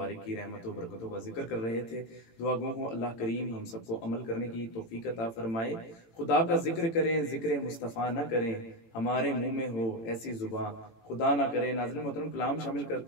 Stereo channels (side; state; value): right; late; 18 ms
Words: کی رحمت و برکتوں کا ذکر کر رہے تھے۔ دعا گو ہوں اللہ کریم ہم سب کو عمل کرنے کی توفیق عطا فرمائے۔ خدا کا ذکر کریں، ذکر مصطفیٰ نہ کریں، ہمارے منہ میں ہو ایسی زباں خدا نہ کرے۔ ناظرین محترم، کلام شامل